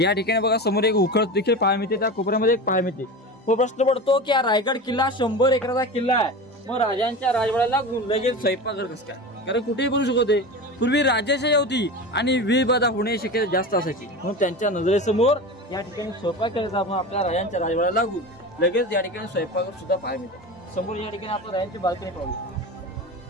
ठिकाणी बघा समोर एक उखळ देखील पाहायला मिळते, त्या कोपऱ्यामध्ये एक पाहायला मिळते. मग प्रश्न पडतो की हा रायगड किल्ला 100 एकराचा किल्ला आहे, मग राजांच्या राजवाड्याला लगेच स्वयंपाकघर कसं काय. कारण कुठेही बनू शकते. पूर्वी राजाशाही होती आणि विवाद होण्याची शक्यता जास्त असायची, म्हणून त्यांच्या नजरेसमोर या ठिकाणी स्वयंपाक करायचा. आपण आपल्या राजांच्या राजवाड्याला लागून लगेच या ठिकाणी स्वयंपाकघर सुद्धा पाहायला मिळते. समोर या ठिकाणी आपण राजांची बाल्कनी पाहू.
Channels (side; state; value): both; normal; correlation 0.28